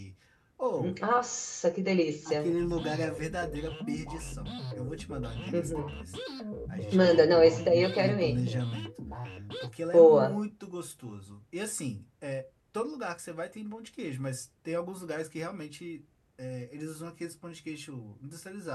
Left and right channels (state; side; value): identical; both; correlation 1.00